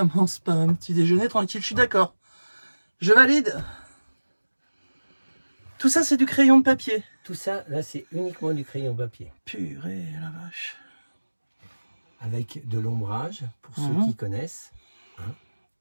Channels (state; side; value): inverted; both; correlation -1.00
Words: par un petit déjeuner tranquille, je suis d'accord. Je valide. Tout ça, c'est du crayon de papier. Tout ça, là, c'est uniquement du crayon papier. Purée, la vache. Avec de l'ombrage, pour ceux qui connaissent.